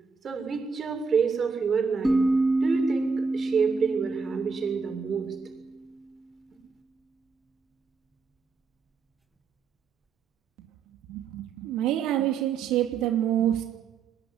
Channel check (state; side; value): quieter; left; 5.3 dB